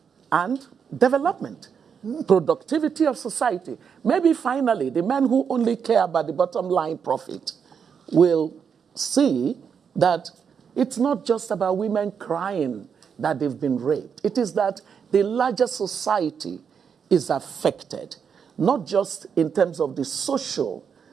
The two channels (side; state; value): left; quieter; 6.9 dB